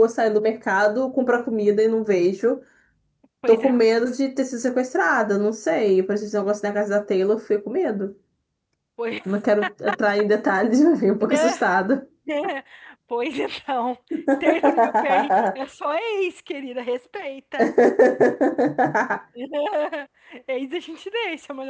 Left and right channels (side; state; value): both; identical; correlation 1.00